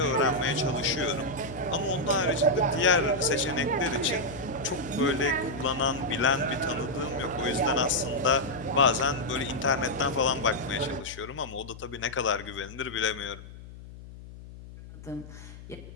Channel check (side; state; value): left; noise; hum, 16 dB below the sound